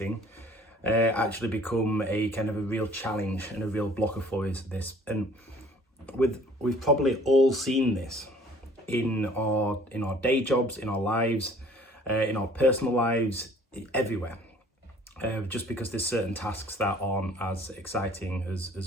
actually become a kind of a real challenge and a real blocker for us. And we've probably all seen this in our day jobs, in our lives, in our personal lives, everywhere. Just because there's certain tasks that aren't as exciting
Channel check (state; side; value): normal; both; correlation 0.53